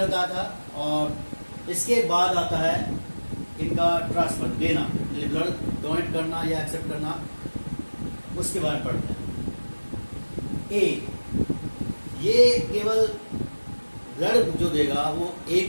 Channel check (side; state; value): both; inverted; correlation -1.00